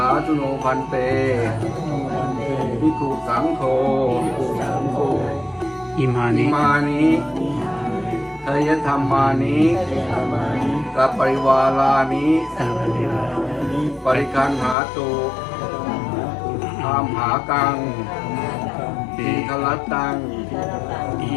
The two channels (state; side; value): drops out; right; at 14.8 s